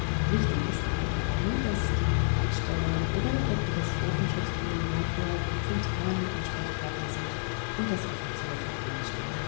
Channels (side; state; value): right; silent; digital silence